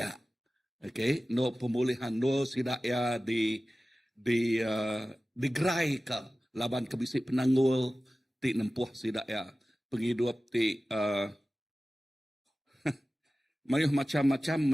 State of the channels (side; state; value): both; normal; correlation 0.96